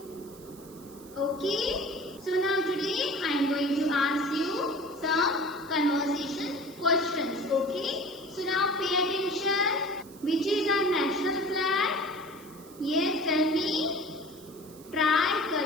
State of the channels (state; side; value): noise; right; hiss, 22 dB below the sound